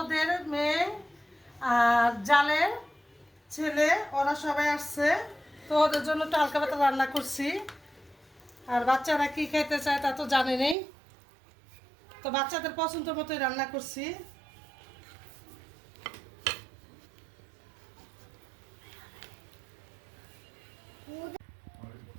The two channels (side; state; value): left; drops out; at 10.8 s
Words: মেয়ে আর জালের ছেলে, ওরা সবাই আসছে। তো ওদের জন্য একটু হালকা পাতলা রান্না করছি। আর বাচ্চারা কি খেতে চায় তা তো জানে নেই, তো বাচ্চাদের পছন্দ মতোই রান্না করছি।